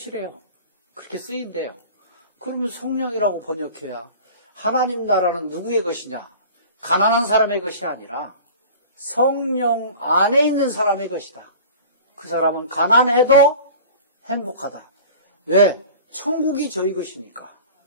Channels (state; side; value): inverted; both; correlation -0.39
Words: 그렇게 쓰인대요. 그러면 성령이라고 번역해야 하나님 나라는 누구의 것이냐? 가난한 사람의 것이 아니라 성령 안에 있는 사람의 것이다. 그 사람은 가난해도 행복하다. 왜? 천국이 저희 것이니까.